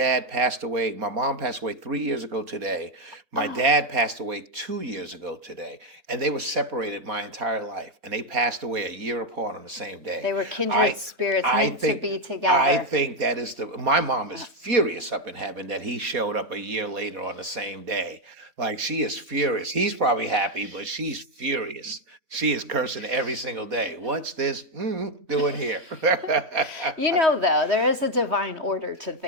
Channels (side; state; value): left; late; 3.7 ms